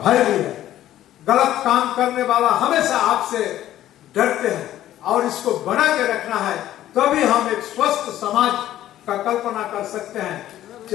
भी है। गलत काम करने वाला हमेशा आपसे डरते हैं और इसको बना के रखना है, तभी हम एक स्वस्थ समाज का कल्पना कर सकते हैं।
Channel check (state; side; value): quieter; right; 13.0 dB